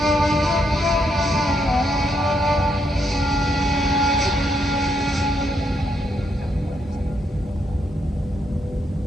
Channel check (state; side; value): normal; both; correlation 0.77